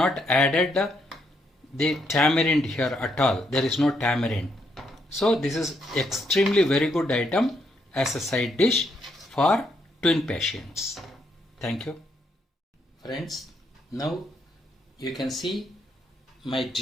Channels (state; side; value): normal; both; correlation 0.75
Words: added the tamarind here at all. There is no tamarind. So this is extremely very good item as a side dish for twin patients. Thank you. Friends, now you can see my